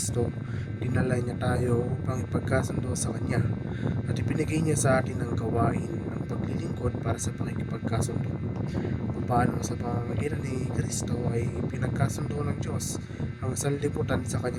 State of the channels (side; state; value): both; identical; correlation 1.00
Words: dinala niya tayo upang ipagkasundo sa Kanya at ibinigay niya sa atin ang gawain ng paglilingkod para sa pakikipagkasundo. Paano sa pamamagitan ni Kristo ay pinagkasundo ng Diyos ang sanlibutan sa